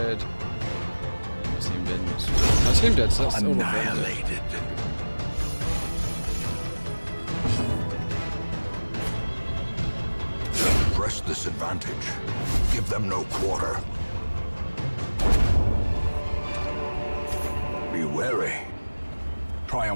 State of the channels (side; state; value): both; inverted; correlation -1.00